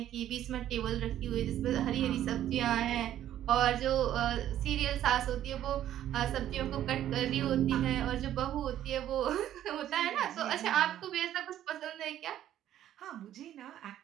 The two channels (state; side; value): quieter; left; 11.8 dB